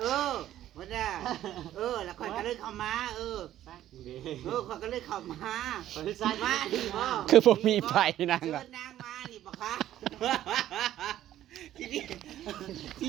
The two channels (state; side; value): quieter; left; 12.6 dB